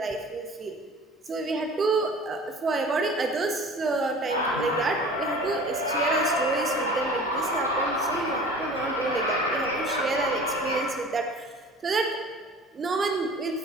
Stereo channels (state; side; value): normal; both; correlation 0.42